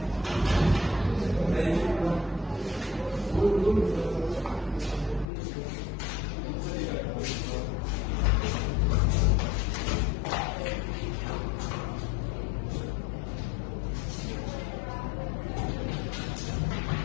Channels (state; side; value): drops out; right; at 5.2 s